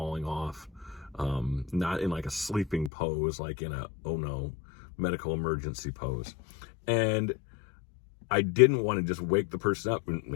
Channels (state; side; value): drops out; right; at 2.9 s